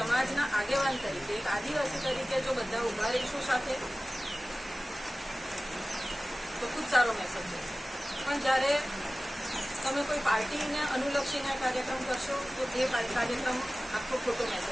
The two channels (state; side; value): normal; both; correlation 0.97